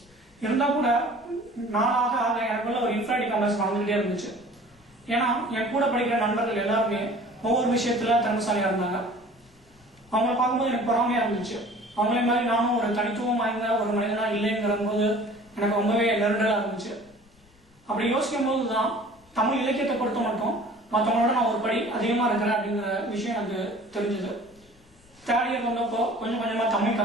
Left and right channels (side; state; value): left; noise; rumble, 29 dB below the sound